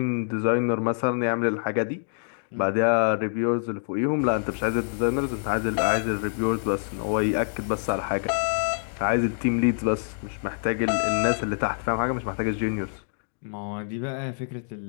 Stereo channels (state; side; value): silent; right; digital silence